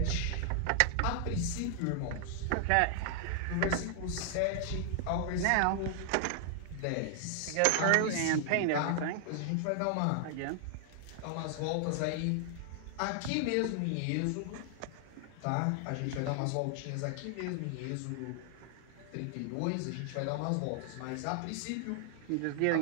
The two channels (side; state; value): both; different; correlation 0.00